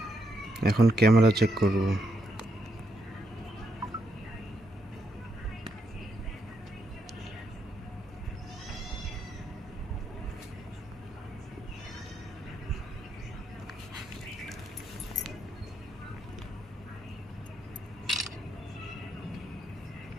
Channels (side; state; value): both; normal; correlation 0.79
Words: এখন camera check করব।